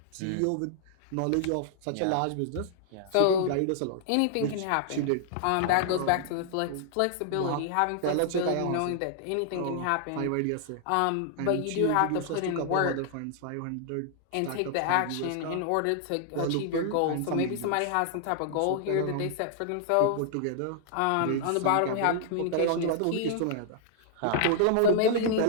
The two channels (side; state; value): both; different; correlation -0.01